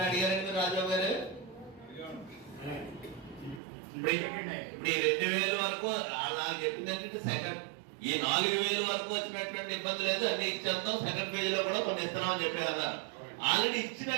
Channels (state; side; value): drops out; left; at 3.6 s